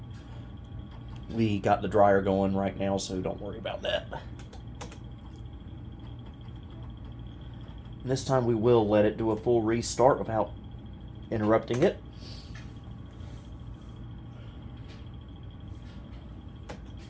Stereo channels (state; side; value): identical; both; correlation 1.00